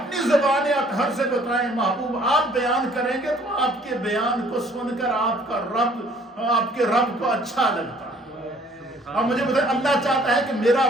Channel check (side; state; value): both; normal; correlation 0.58